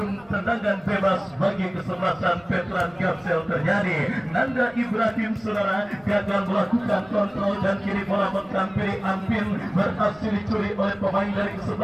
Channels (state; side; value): noise; left; rumble, 29 dB below the sound